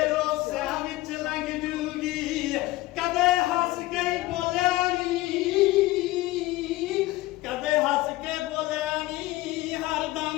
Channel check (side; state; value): right; quieter; 18.5 dB